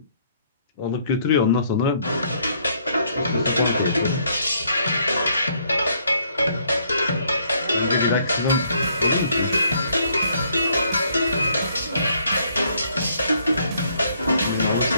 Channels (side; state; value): both; inverted; correlation -0.68